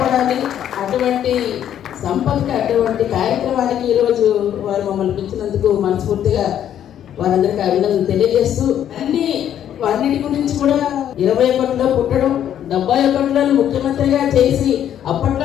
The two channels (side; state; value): right; quieter; 10.3 dB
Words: అటువంటి సంపదకి, అటువంటి కార్యక్రమానికి ఈరోజు వారు మమ్మల్ని పిలిచినందుకు మనస్ఫూర్తిగా వారందరికీ అభినందనలు తెలియజేస్తూ, అన్నిటి గురించి కూడా 21లో పుట్టడం, 71లో ముఖ్యమంత్రిగా చేసి